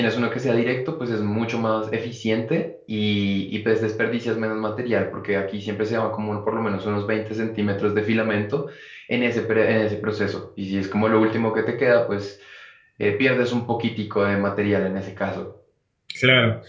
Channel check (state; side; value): identical; both; correlation 1.00